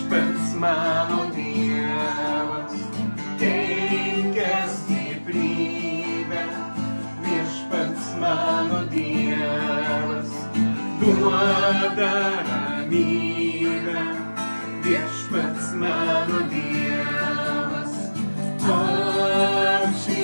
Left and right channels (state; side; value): inverted; both; correlation -1.00